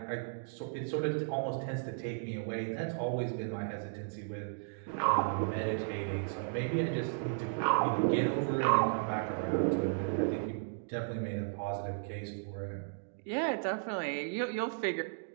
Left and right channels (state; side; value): silent; left; digital silence